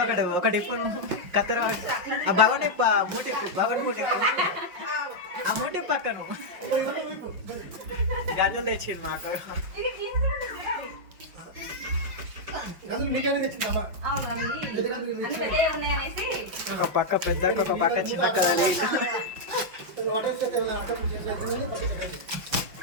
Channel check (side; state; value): left; late; 5.6 ms